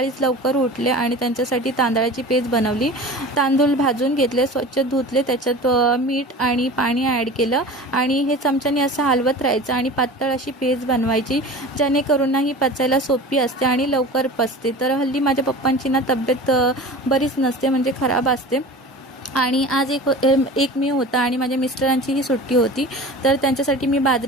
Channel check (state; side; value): normal; both; correlation 0.36